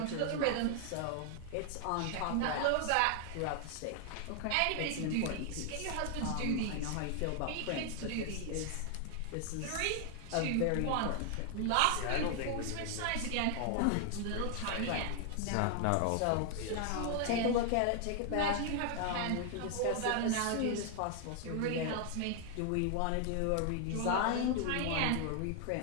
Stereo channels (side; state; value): both; different; correlation 0.00